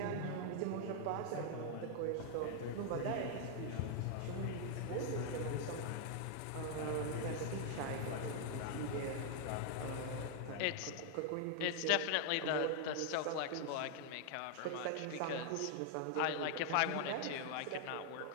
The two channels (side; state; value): both; different; correlation 0.00